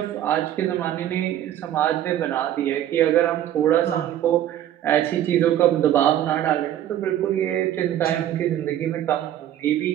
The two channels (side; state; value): left; quieter; 11.7 dB